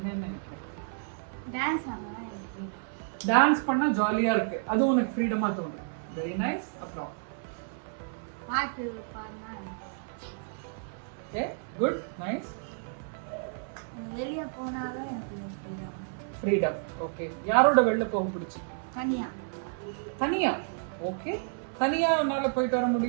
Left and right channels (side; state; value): left; silent; 55 dB below the other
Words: நினைக்கிற? டான்ஸ் பண்ணா ஜாலியா இருக்கு, அது உனக்கு ஃப்ரீடமா தோணுது. Very nice. அப்புறம் பாட்டு பாடுனா ஓகே, குட், நைஸ். வெளிய போனாவே எனக்கு ஃப்ரீடம். ஓகே, யாரோட வெளில போக பிடிச்சி? தனியா. தனியா? ஓகே, தனியா உன்னால போயிட்டு வர